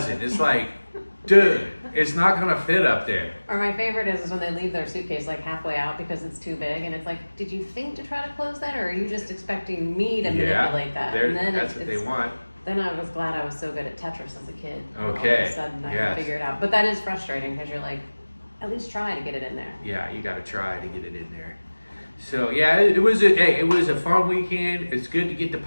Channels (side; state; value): both; inverted; correlation -1.00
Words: It's like, dude, it's not gonna fit up there. Or my favorite is when they leave their suitcase like halfway out because it's too big, and it's like, did you think to try to close that, or are you just expecting me to manipulate that? And then that's what they want. Then I was glad I was so good at Tetris as a kid. Okay. All of a sudden I can figure it out. But that is frustrating because you're like, at least try to get it in there. Yeah, you got to try to get it in there. So yeah, it was a fun weekend. It's good to get the